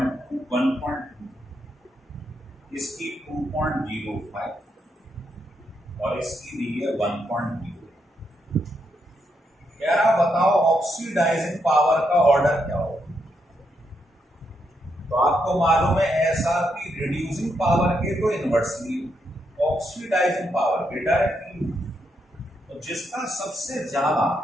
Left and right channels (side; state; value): both; normal; correlation 0.80